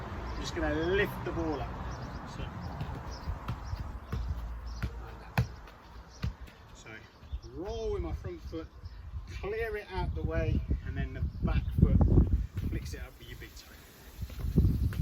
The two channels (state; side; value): identical; both; correlation 1.00